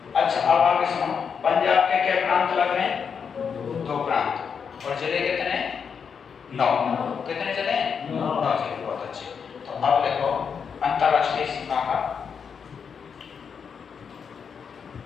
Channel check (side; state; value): right; quieter; 6.5 dB